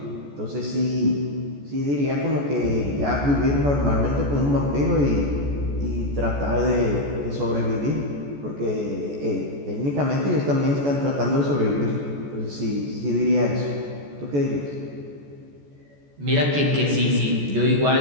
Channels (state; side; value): late; left; 14 ms